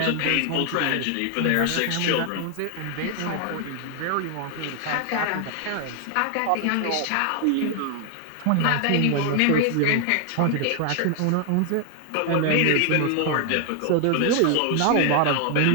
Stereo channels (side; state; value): both; different; correlation 0.00